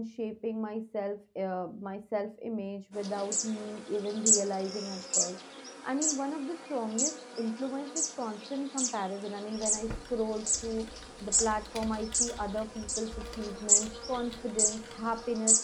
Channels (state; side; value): identical; both; correlation 1.00